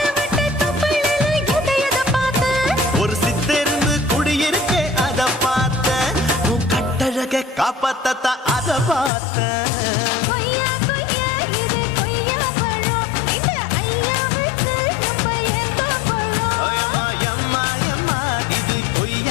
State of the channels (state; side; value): drops out; right; at 9.1 s